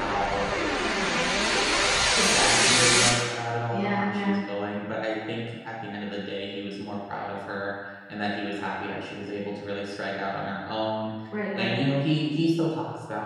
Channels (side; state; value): both; identical; correlation 1.00